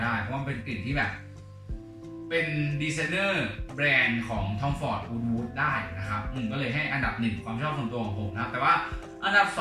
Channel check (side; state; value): both; identical; correlation 1.00